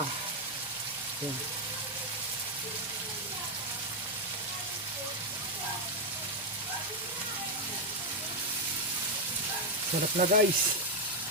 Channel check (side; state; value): both; normal; correlation 0.02